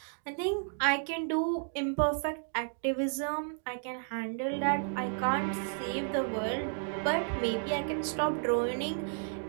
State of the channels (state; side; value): silent; left; digital silence